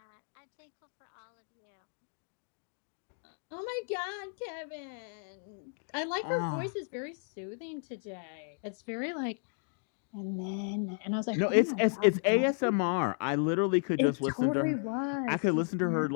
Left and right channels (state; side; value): silent; right; 55 dB below the other